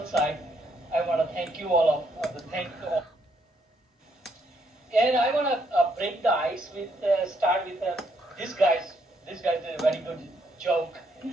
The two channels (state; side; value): normal; both; correlation 0.73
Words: side, I want to thank you all thank all. And I want to break the ice with start with this guy's. This guy did a very good joke.